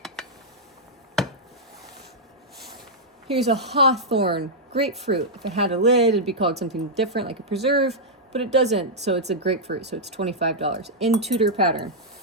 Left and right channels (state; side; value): normal; both; correlation -0.07